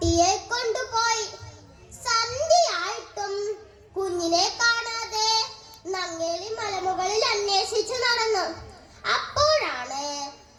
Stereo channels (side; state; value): both; identical; correlation 1.00